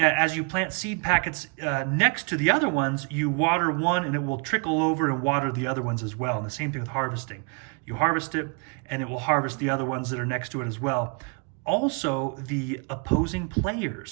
you plant seed packets next to the other ones, you water one and it will trickle over and water the other ones as well. And the same thing with harvesting. You harvest it and it will harvest the other ones that are next to it as well. Also, the opposing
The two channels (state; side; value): quieter; left; 34.6 dB